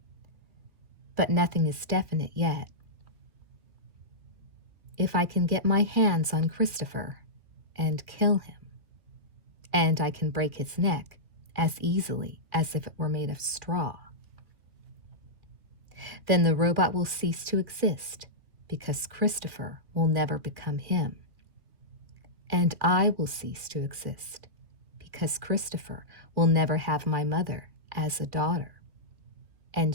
But nothing is definite yet. If I can get my hands on Christopher and kill him, and I can break his neck as easily as if it were made of straw, then the robot will cease to exist because Christopher will never become him. And I will cease to exist because Christopher will never have my mother as a daughter,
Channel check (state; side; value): late; left; 2.4 ms